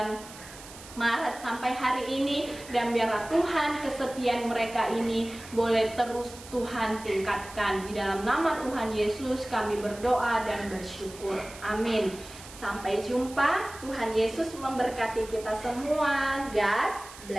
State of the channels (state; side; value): noise; right; hiss, 17 dB below the sound